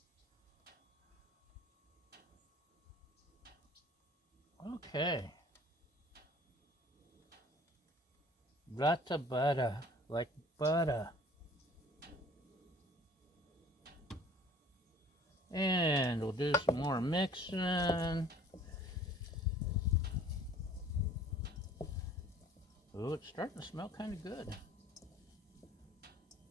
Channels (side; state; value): both; normal; correlation 0.51